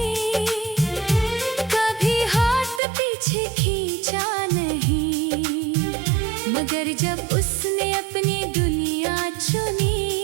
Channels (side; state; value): left; drops out; at 2.8 s